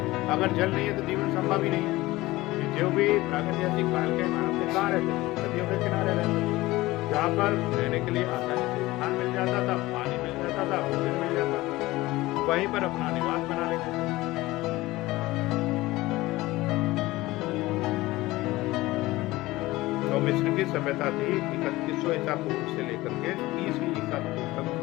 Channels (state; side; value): quieter; right; 18.9 dB